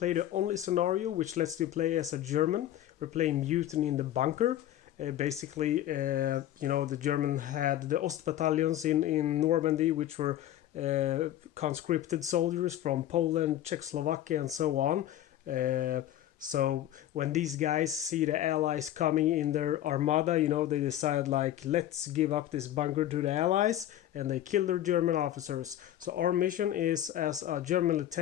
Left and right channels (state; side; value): quieter; right; 12.4 dB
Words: the only scenario which lets you play as a German. We're playing Mutiny in the Bunker. The German had the Ost battalions in Normandy, which were conscripted soldiers from Poland, Czechoslovakia and so on. So when these guys see the Allies coming in their armada, they decide let's give up this bunker to the Allies, and they kill their German officers. So our mission is, as a German